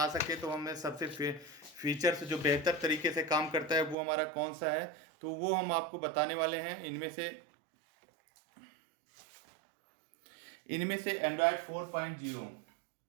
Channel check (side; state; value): left; drops out; at 4.0 s